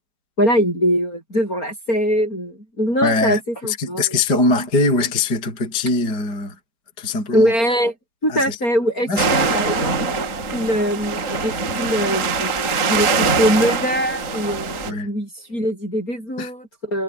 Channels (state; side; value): late; right; 3.9 ms